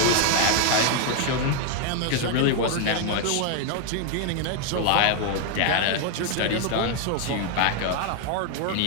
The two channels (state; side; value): different; both; correlation 0.00